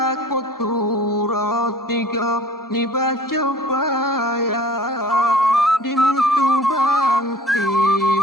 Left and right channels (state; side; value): normal; both; correlation 0.48